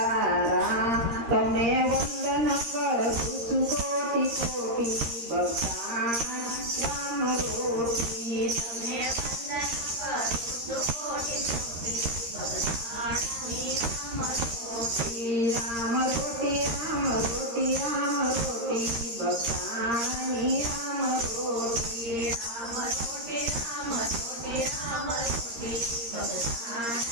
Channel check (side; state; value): left; late; 13 ms